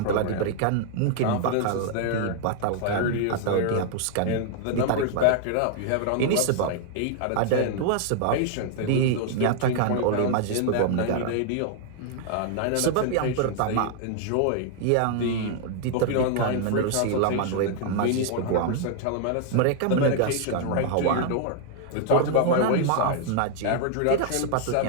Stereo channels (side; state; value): both; different; correlation 0.00